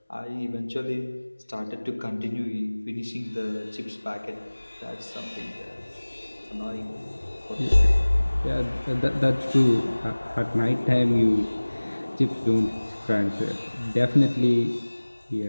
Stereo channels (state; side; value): inverted; both; correlation -1.00